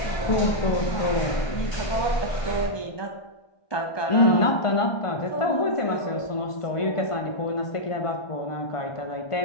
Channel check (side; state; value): right; late; 1.5 ms